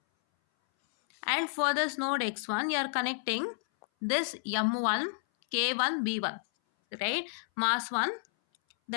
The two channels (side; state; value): right; silent; 57 dB below the other